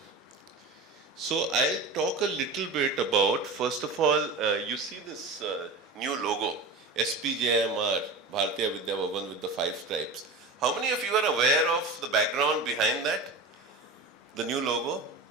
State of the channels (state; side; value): quieter; left; 3.3 dB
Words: So I'll talk a little bit about, first of all, you see this new logo, SPJIMR, Bharatiya Vidya Bhavan with the 5 stripes. How many of you are aware of the background behind that? The new logo?